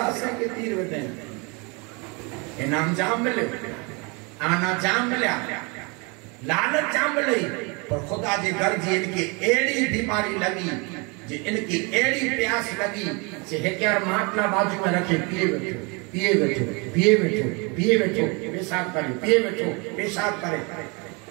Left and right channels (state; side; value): quieter; left; 30.3 dB